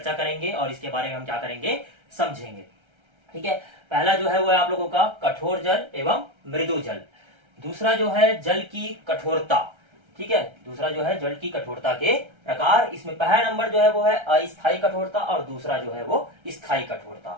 करेंगे और इसके बारे में हम क्या करेंगे, समझेंगे। ठीक है, पहला जो है वो है आप लोगों का कठोर जल एवं मृदु जल। दूसरा जो है जल की कठोरता। ठीक है, दूसरा जो है जल की कठोरता के प्रकार। इसमें पहला नंबर जो है वो है अस्थायी कठोरता और दूसरा जो है वो स्थायी कठोरता।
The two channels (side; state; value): left; late; 1.3 ms